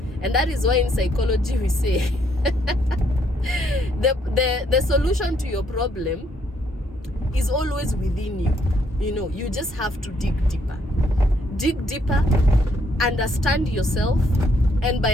And that is why in psychology we say the solution to your problem is always within you. You just have to dig deeper, understand yourself. And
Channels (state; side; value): normal; both; correlation 0.70